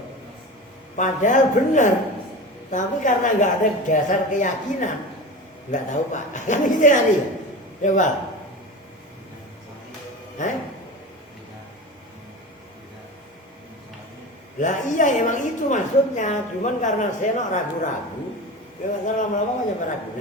Padahal benar. Tapi karena nggak ada dasar keyakinan, nggak tahu pak. Kan gitu tadi. Coba. Lah iya emang itu maksudnya. Cuman karena saya ragu-ragu, ya lama-lama kan nyampe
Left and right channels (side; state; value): both; normal; correlation 0.30